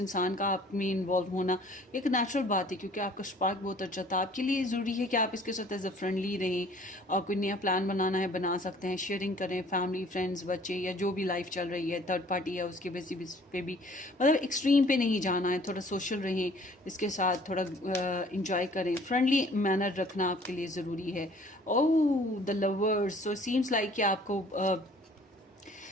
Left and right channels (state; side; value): normal; both; correlation 0.54